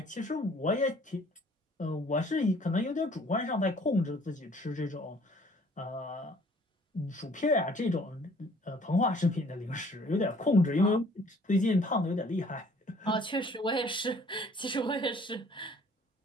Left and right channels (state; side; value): normal; both; correlation 0.56